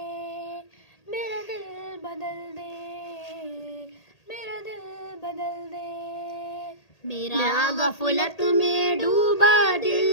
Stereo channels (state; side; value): late; right; 1.8 ms